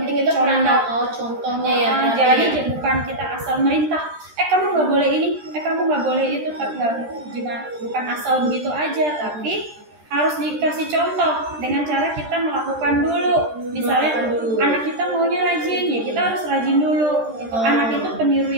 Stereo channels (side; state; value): left; late; 13 ms